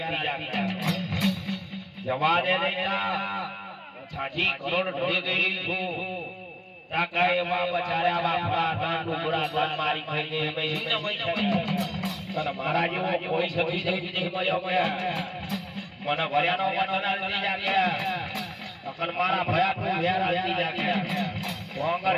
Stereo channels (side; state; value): both; identical; correlation 1.00